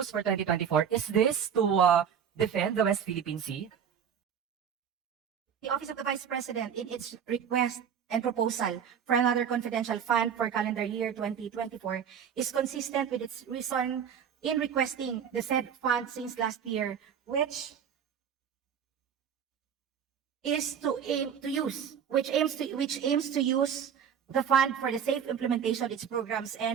for 2024, is this to defend the West Philippine Sea? The Office of the Vice President, in its request and proposal for another confidential fund for calendar year 2024, is consistent with its reason in requesting the said fund since last year, which aims to use the fund for the safe implementation of its programs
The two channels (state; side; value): quieter; left; 8.0 dB